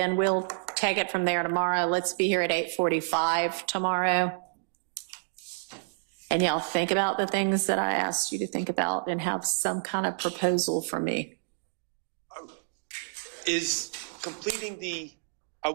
we'll take it from there tomorrow. Let's be here at 8:45 tomorrow. And y'all think about the things that I asked you to think about and have some kind of proposal for me. Is completing are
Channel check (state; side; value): silent; left; digital silence